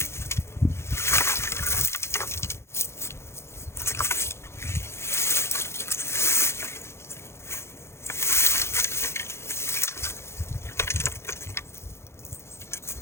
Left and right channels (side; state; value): right; late; 0.13 ms